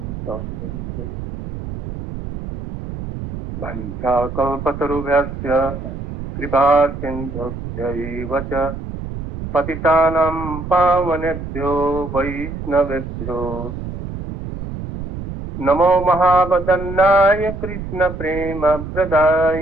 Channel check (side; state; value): right; noise; rumble, 8 dB below the sound